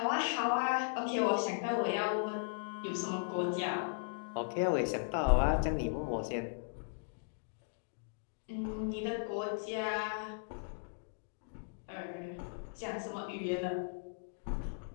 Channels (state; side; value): silent; right; digital silence